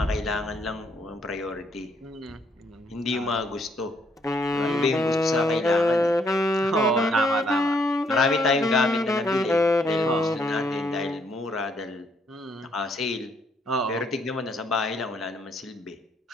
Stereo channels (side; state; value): both; normal; correlation 0.70